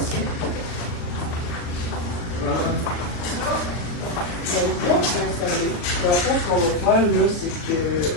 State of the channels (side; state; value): right; late; 39 ms